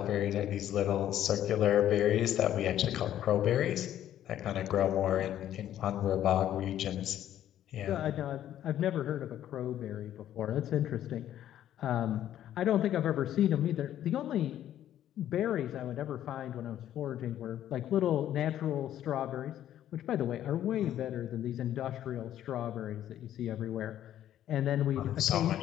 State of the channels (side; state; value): right; quieter; 11.6 dB